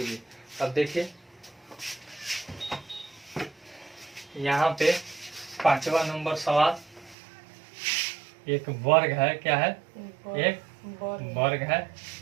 अब देखिए यहाँ पे 5वां नंबर सवाल, एक वर्ग है, क्या है, एक वर्ग है,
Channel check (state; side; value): drops out; left; at 7.2 s